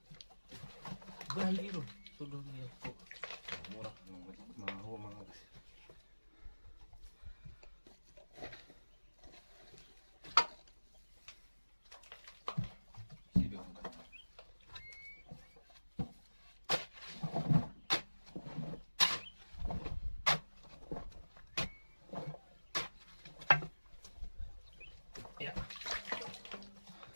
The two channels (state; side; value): inverted; both; correlation -1.00